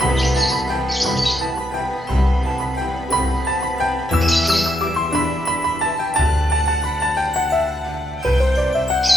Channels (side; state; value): both; normal; correlation 0.78